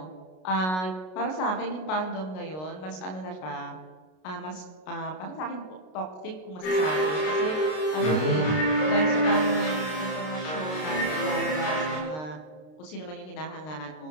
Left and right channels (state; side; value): late; right; 32 ms